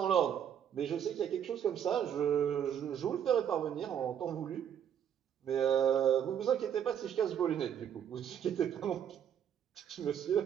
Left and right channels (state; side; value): quieter; left; 9.1 dB